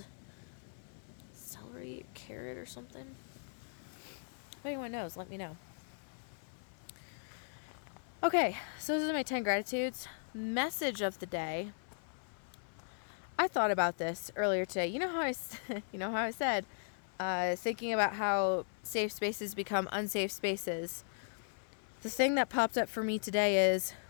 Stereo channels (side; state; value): right; silent; 53 dB below the other